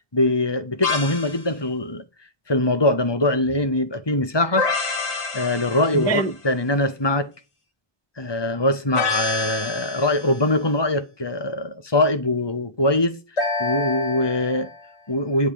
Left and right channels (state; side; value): late; right; 1.2 ms